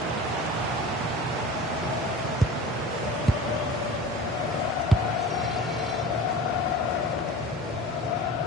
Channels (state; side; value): normal; both; correlation 0.37